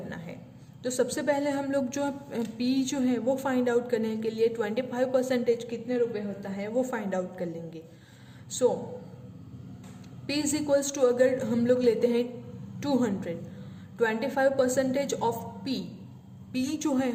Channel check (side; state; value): both; identical; correlation 1.00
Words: है। तो सबसे पहले हम लोग जो P जो है वो फाइंड आउट करने के लिए 25% कितने रुपए होता है वो फाइंड आउट कर लेंगे। सो P इज इक्वल्स टू, अगर हम लोग लेते हैं 200, 25% ऑफ P जो है